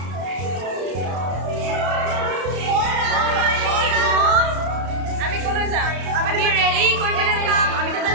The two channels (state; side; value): late; left; 32 ms